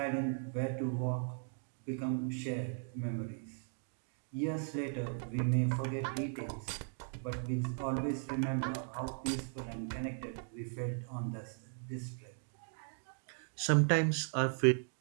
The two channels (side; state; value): left; silent; 53 dB below the other